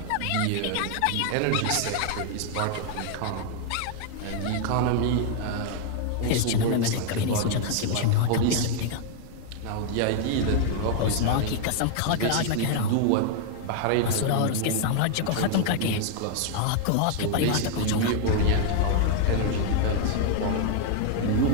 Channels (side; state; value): both; different; correlation 0.00